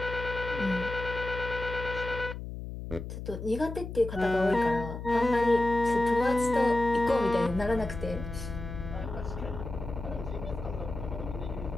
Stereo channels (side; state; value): left; noise; hum, 8 dB below the sound